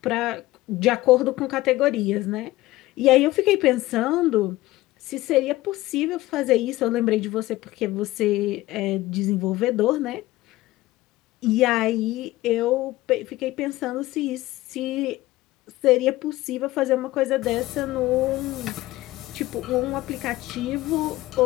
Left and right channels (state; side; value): quieter; right; 17.6 dB